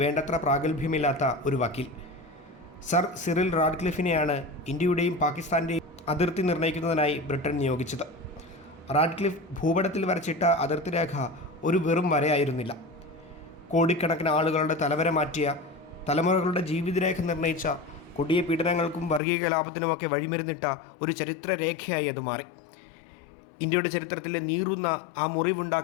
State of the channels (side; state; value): right; drops out; at 19.2 s